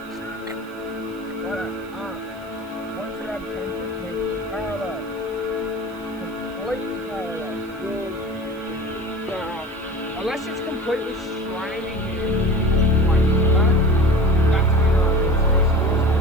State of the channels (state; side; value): noise; right; hiss, 27 dB below the sound